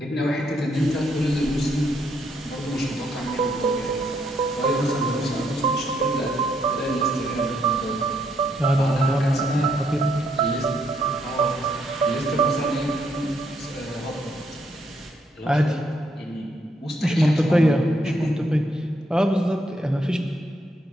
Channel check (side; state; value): both; normal; correlation 0.74